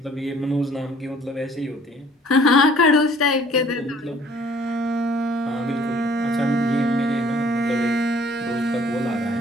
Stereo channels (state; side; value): normal; both; correlation 0.56